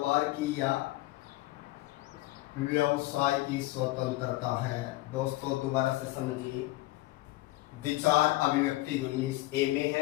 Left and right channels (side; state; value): right; quieter; 18.3 dB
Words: की या व्यवसाय की स्वतंत्रता है। दोस्तों दोबारा से समझिए, विचार अभिव्यक्ति 19A में